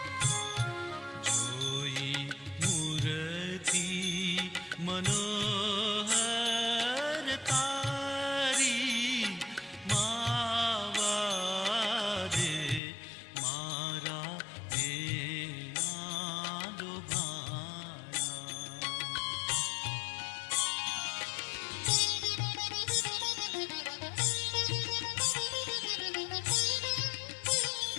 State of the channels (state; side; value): drops out; right; at 12.8 s